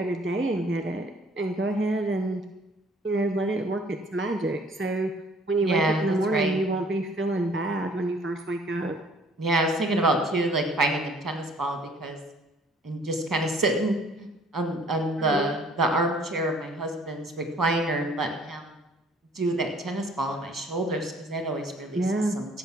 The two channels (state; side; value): normal; both; correlation 0.56